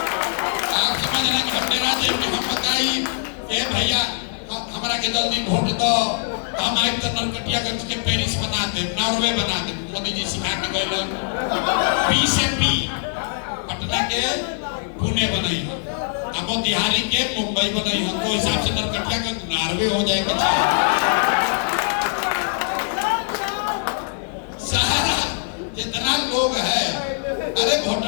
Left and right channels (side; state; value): right; silent; digital silence